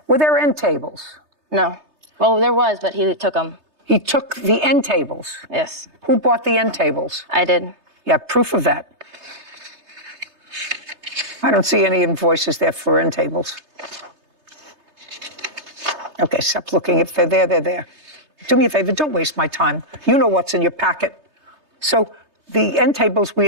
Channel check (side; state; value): left; late; 3.3 ms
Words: Were there end tables? No. Well, there was, but he took them. He took the end tables. Yes. Who bought the end tables? I did. You have proof of that. I don't see any invoices there for end tables. Okay, stop looking. If they're there, they're there. Do me a favor, don't waste my time. You know what's in your packet. So the end tables, we